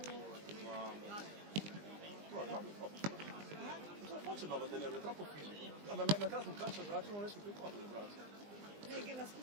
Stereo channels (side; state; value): left; late; 20 ms